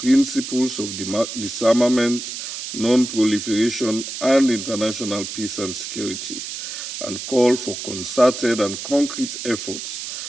of disarmament, non-proliferation, and international peace and security, and call for concerted and concrete efforts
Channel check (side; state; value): right; noise; hiss, 7 dB below the sound